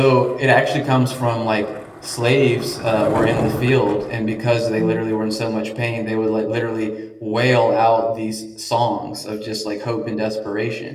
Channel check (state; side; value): identical; both; correlation 1.00